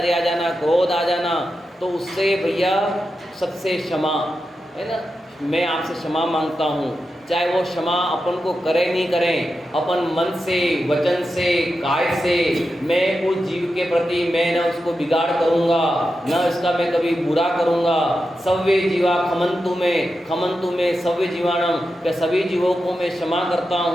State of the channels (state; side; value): normal; both; correlation 0.89